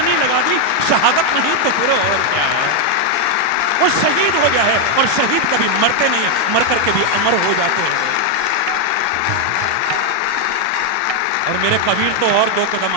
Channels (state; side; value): different; both; correlation 0.01